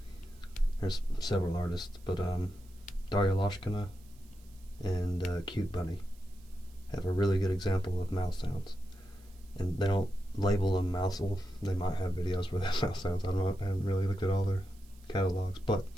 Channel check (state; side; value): noise; right; hiss, 28 dB below the sound